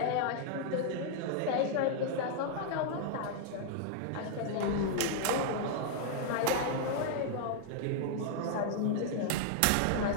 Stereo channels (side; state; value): both; different; correlation 0.00